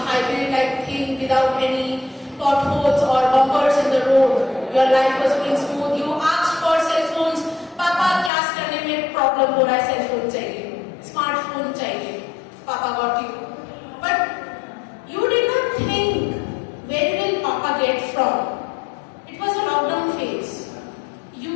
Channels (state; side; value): drops out; right; at 8.3 s